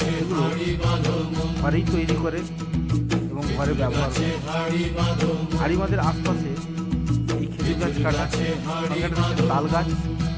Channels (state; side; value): identical; both; correlation 1.00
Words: ঘরেই তৈরি করে এবং ঘরে ব্যবহার করে। আড়িমাদের আশপাশে এই খেজুর গাছ কাটা, তাল গাছ,